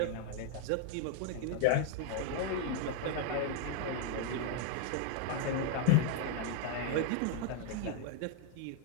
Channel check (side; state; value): both; different; correlation 0.01